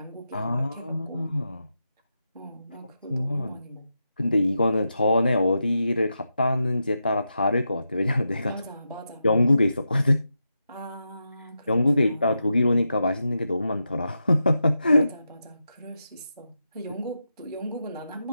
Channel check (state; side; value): inverted; both; correlation -0.88